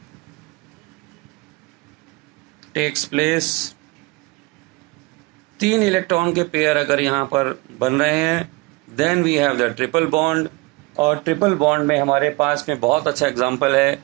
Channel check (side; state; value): left; quieter; 25.0 dB